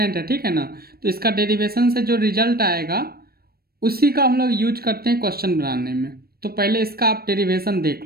है, ठीक है ना। तो इसका डेरिवेशन से जो रिजल्ट आएगा उसी का हम लोग यूज करते हैं क्वेश्चन बनाने में। तो पहले इसका आप डेरिवेशन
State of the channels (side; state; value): left; late; 0.44 ms